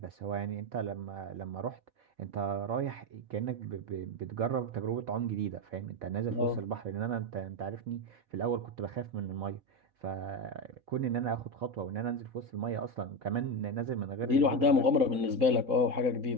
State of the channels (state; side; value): late; left; 4.1 ms